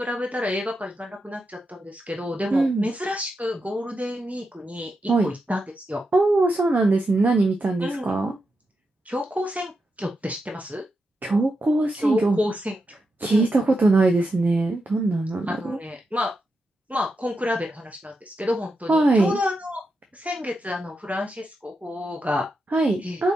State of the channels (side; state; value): both; normal; correlation 0.86